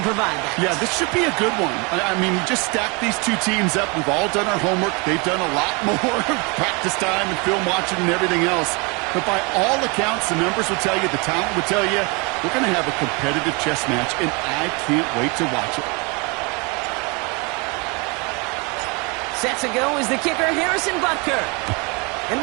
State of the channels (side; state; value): left; quieter; 29.9 dB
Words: provide that. Yeah, this should be a good one. I mean, you just stack these two teams up. We've all done our homework. They've done a lot more practice time and film watching and everything else. But by all accounts, the numbers will tell you, the talent will tell you, we're going to have a competitive chess match, and I can't wait to watch it. Set to go is the kicker, Harrison Butker.